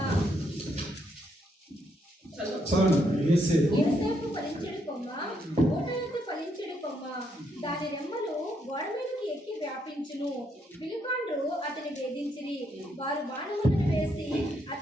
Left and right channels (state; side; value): normal; both; correlation 0.76